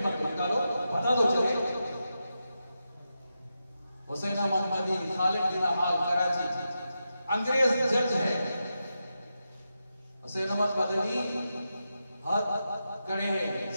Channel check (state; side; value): inverted; both; correlation -0.88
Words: तो निकालो, बता दो चले। हुसैन अहमद मदनी खालिद बिन हाल कराची अंग्रेज जज है। हुसैन अहमद मदनी हाथ खड़े हैं,